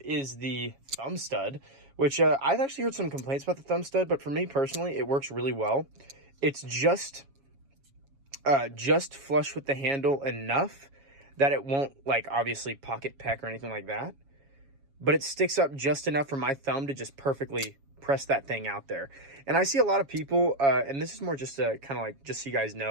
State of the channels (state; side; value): late; left; 7.3 ms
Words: is the thumb stud, which I've actually heard some complaints about the thumb stud, but for me personally, it works really well. It's just flush with the handle enough that it won't, obviously pocket peck or anything like that. But it sticks up just enough for my thumb to just perfectly press that thing out there. And I see a lot of people, and this is more just to kind of just so you guys